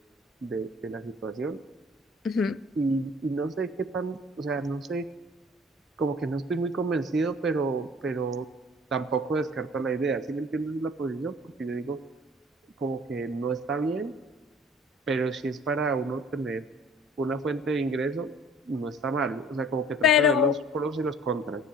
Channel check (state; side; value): normal; both; correlation 0.52